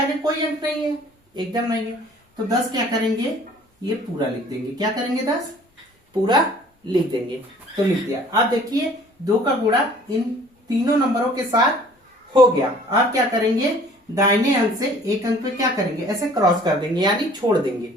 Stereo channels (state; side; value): normal; both; correlation 0.52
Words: कोई अंक नहीं है, एकदम नहीं है। तो 10 क्या करेंगे? ये पूरा लिख देंगे। क्या करेंगे? 10 पूरा लिख देंगे। तो लिख दिया। अब देखिए, 2 का गुणा इन तीनों नंबरों के साथ हो गया। अब क्या करेंगे? दाहिने अंक से एक अंक पे क्या करेंगे? ऐसे क्रॉस कर देंगे, यानी छोड़ देंगे।